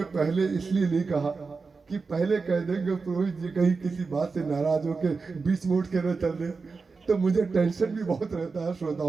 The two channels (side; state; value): left; quieter; 4.5 dB